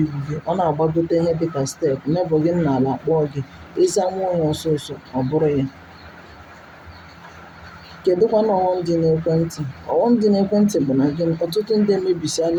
gị, ọ na-agbagote ihe dịka steepụ, nebọ gị n'ala kpọọ gị, ịza nwa onye ọsọsọ, ọ bụrụ ya. Kedụkwanụ ọghọm dị n'ekwentị? Ọghọm dị n'ekwentị bụ na gịnị? Ọtụtụ ndị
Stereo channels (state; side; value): identical; both; correlation 1.00